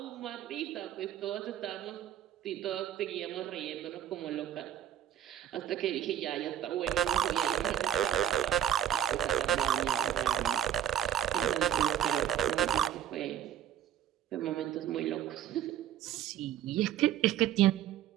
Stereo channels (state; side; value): quieter; left; 10.6 dB